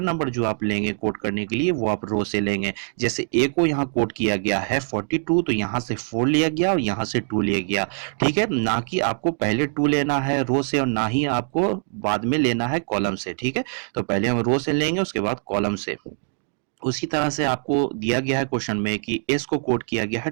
नंबर जो आप लेंगे कोड करने के लिए वो आप रो से लेंगे। जैसे ए को यहाँ कोड किया गया है 42, तो यहाँ से 4 लिया गया और यहाँ से 2 लिया गया, ठीक है। ना कि आपको पहले 2 लेना है रो से और ना ही आपको बाद में लेना है कॉलम से, ठीक है। तो पहले हम रो से लेंगे, उसके बाद कॉलम से। उसी तरह से आपको दिया गया है क्वेश्चन में कि एस को कोड किया गया है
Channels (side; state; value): left; silent; 58 dB below the other